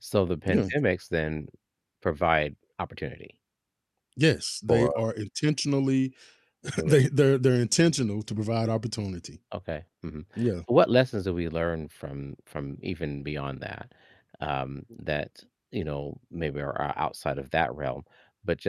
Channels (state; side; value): identical; both; correlation 1.00